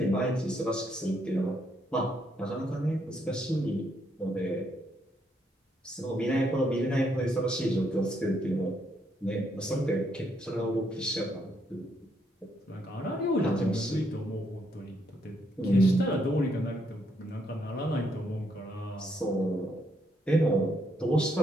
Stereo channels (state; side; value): normal; both; correlation 0.74